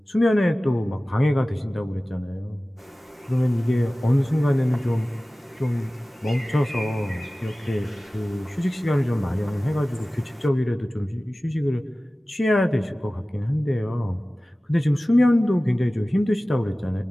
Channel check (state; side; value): normal; both; correlation 0.97